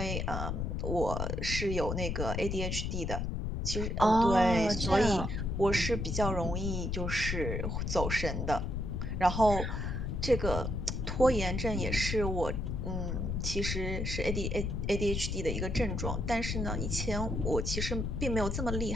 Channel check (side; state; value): left; noise; rumble, 2 dB below the sound